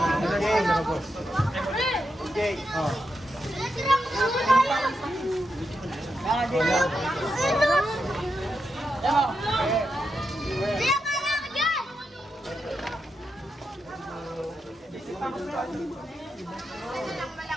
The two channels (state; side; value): normal; both; correlation 0.86